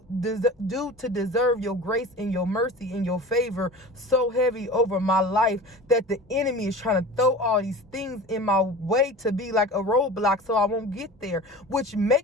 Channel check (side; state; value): both; normal; correlation 0.36